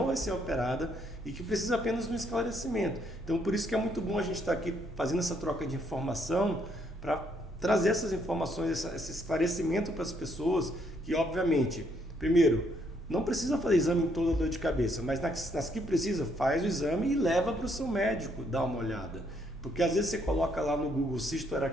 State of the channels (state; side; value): normal; both; correlation 0.71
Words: vai ser operada e que precisa apenas de um esclarecimento. Então, por isso que é muito bom a gente estar aqui fazendo essa troca de informação para trazer essas informações, esse esclarecimento para as pessoas que, obviamente, primeiro, não precisa fazer exame em toda dor de cabeça, mas nas que precisa, faz o exame e leva para o seu médico dar uma olhada. Porque às vezes você coloca lá no Google cisto